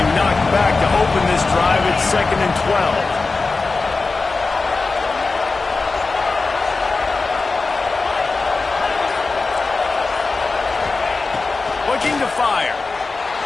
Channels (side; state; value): right; quieter; 3.9 dB